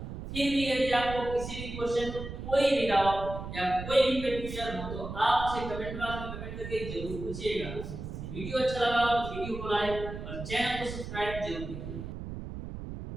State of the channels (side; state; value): right; noise; rumble, 8 dB below the sound